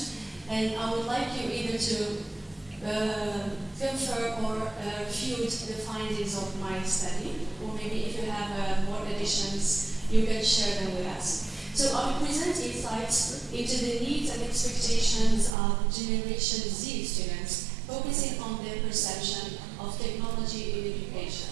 And I would like you either to confirm or refute the findings of my study, or maybe if you have more additions, you can share them with us. So I will present insights into the needs and expectations of Generation Z students, focusing on their perception of technology in education.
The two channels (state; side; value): drops out; left; at 15.5 s